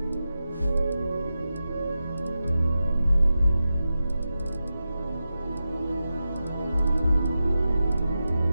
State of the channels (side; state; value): both; inverted; correlation -0.91